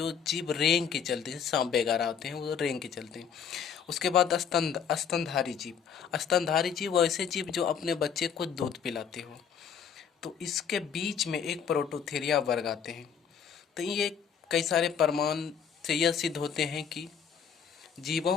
जीव रेंग के चलते हैं, सांप वगैरह होते हैं वो रेंग के चलते हैं। उसके बाद स्तनधारी जीव। स्तनधारी जीव वैसे जीव जो अपने बच्चे को दूध पिलाते हो। तो इसके बीच में एक प्रोटोथीरिया वर्ग आते हैं। तो ये कई सारे प्रमाण से यह सिद्ध होते हैं कि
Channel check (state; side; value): quieter; right; 7.3 dB